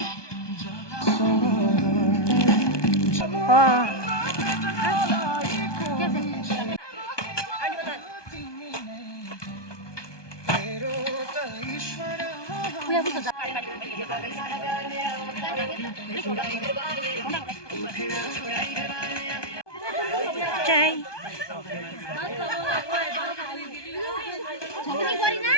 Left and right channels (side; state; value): right; late; 1.2 ms